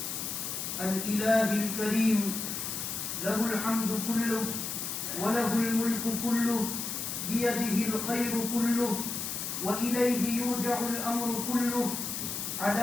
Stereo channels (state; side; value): noise; left; hiss, 4 dB below the sound